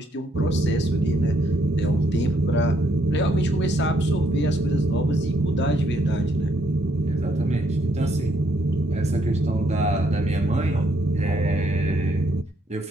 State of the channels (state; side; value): normal; both; correlation 0.72